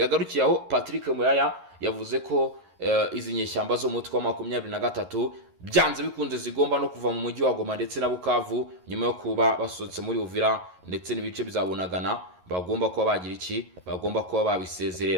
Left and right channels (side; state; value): left; late; 11 ms